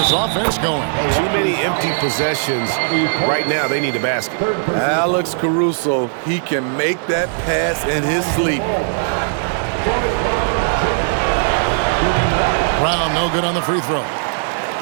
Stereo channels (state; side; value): silent; left; digital silence